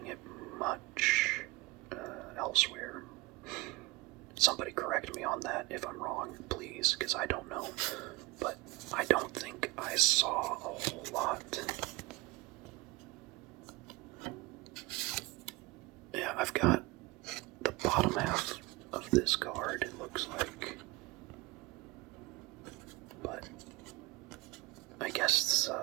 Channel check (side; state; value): left; quieter; 22.0 dB